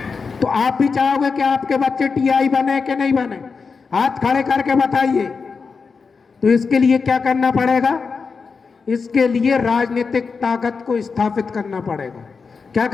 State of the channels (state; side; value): quieter; right; 5.0 dB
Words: तो आप भी चाहोगे कि आपके बच्चे टीआई बने कि नहीं बने? हाथ खड़े करके बताइए। तो इसके लिए क्या करना पड़ेगा? इसके लिए राजनीतिक ताकत को स्थापित करना पड़ेगा। क्या